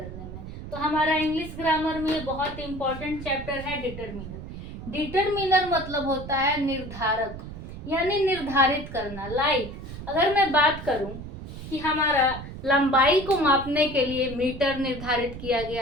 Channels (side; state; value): right; noise; rumble, 11 dB below the sound